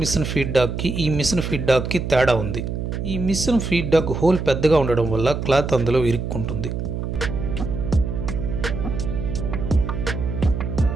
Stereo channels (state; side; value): noise; right; hum, 4 dB below the sound